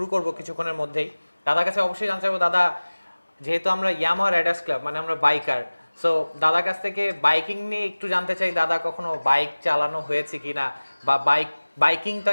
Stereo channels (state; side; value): inverted; both; correlation -1.00